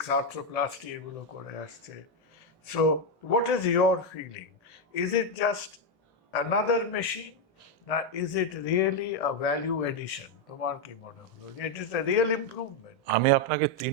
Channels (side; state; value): both; normal; correlation 0.04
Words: আর্থ্রোপ্লাস্টি এগুলো করে আসছে। So what is your feeling? Is it just another machine, না is it really a value addition? তোমার কি মনে হলো যে it is a real improvement? আমি আপনাকে